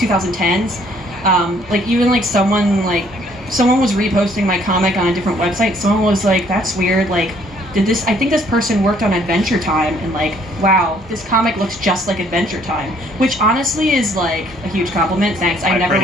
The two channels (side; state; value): both; normal; correlation 0.63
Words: Like even like someone was reposting my comic on a different website. Someone was like, "That's weird. Like, I think this person worked on Adventure Time, and like, wow, this comic looks just like Adventure Time," which honestly is like a huge compliment. Thanks. I